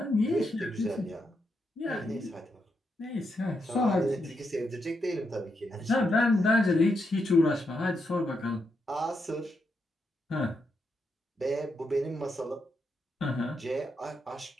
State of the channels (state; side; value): normal; both; correlation 0.82